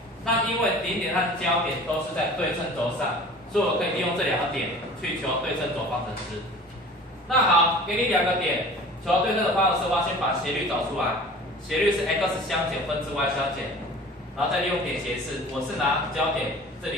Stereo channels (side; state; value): both; normal; correlation 0.43